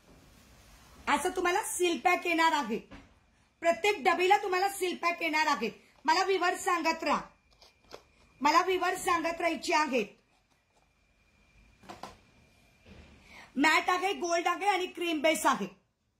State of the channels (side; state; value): both; identical; correlation 1.00